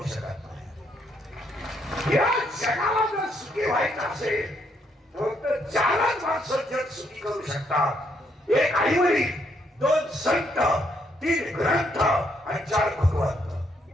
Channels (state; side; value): normal; both; correlation 0.73